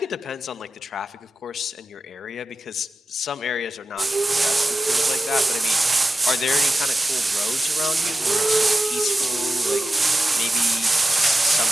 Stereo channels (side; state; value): both; normal; correlation 0.93